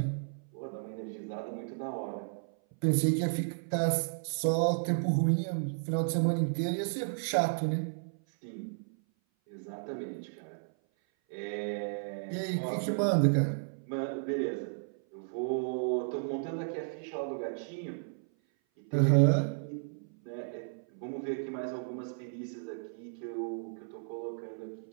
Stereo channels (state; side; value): silent; left; 55 dB below the other